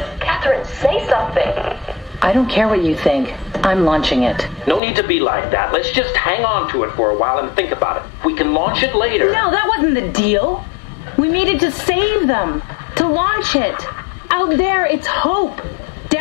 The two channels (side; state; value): right; drops out; at 4.8 s